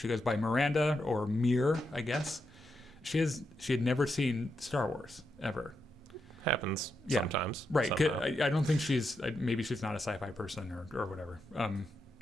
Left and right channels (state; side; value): normal; both; correlation 0.84